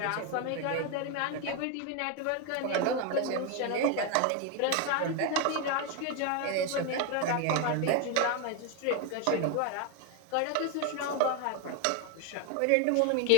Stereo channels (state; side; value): different; both; correlation 0.02